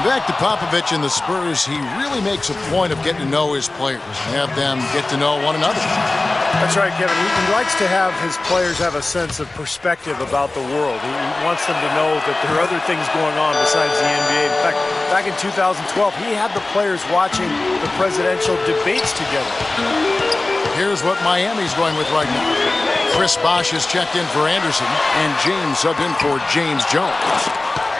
back to Popovich and the Spurs, he really makes a point of getting to know his players and have them get to know one another. That's right, Kevin. He likes to have his players have a sense of perspective about the world. He wants them to know that there are other things going on besides the NBA. In fact, back in 2012, he had the players watching the presidential debates together. Here's what Miami's going with right now. Chris Bosh has checked in for Anderson, and James subbed in for James Jones.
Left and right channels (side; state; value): right; quieter; 3.1 dB